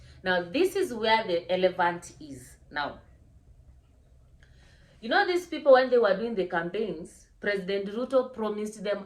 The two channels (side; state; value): both; identical; correlation 1.00